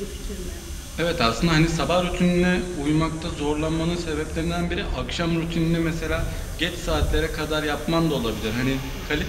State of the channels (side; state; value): both; identical; correlation 1.00